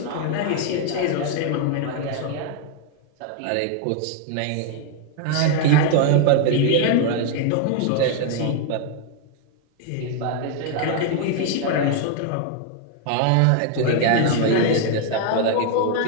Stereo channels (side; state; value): both; different; correlation 0.00